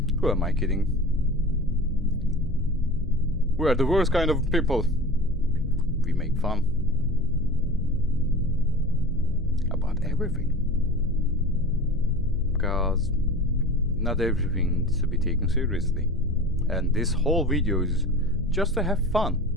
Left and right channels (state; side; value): normal; both; correlation 0.34